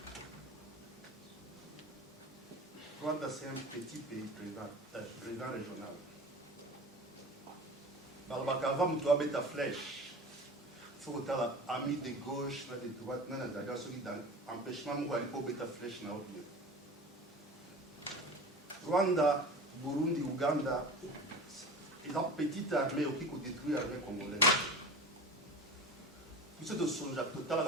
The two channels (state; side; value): normal; both; correlation 0.34